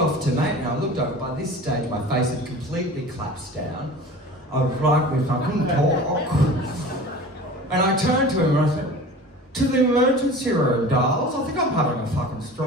to, mate? And I looked over. By this stage, my face had completely collapsed down. I was like this, I couldn't talk. And I turned to him and I said, to the emergency room, darls. I think I'm having a fucking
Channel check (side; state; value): both; normal; correlation 0.39